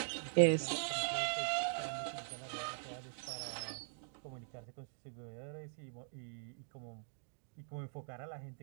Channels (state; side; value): silent; left; digital silence